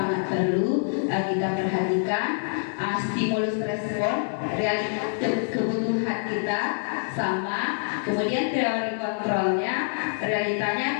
perlu kita perhatikan. Stimulus respon, realitas kebutuhan kita sama, kemudian teori kontrolnya,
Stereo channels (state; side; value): silent; right; digital silence